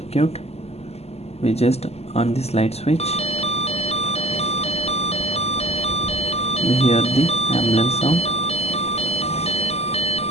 We just on the slide switch, we hear the ambulance sound,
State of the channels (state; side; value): late; right; 0.30 ms